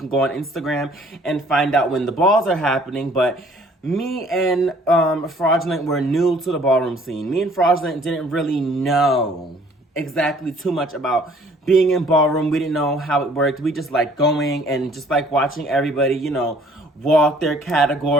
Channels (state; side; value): normal; both; correlation 0.57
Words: go on Instagram and find out when the balls are happening. But me and Fraudulent were new to the ballroom scene. Me and Fraudulent didn't really know exactly too much about being in ballroom. We didn't know how it worked. We just like going and just like watching everybody, you know, walk their